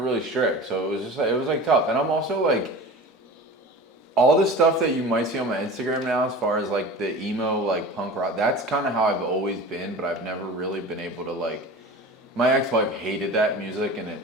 really strict, so it was just like, it was like tough. And I'm also like, all the stuff that you might see on my Instagram now, as far as like the emo, like punk rock, that's kind of how I've always been, but I've never really been able to like, my ex-wife hated that music, and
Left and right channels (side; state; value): both; normal; correlation 0.35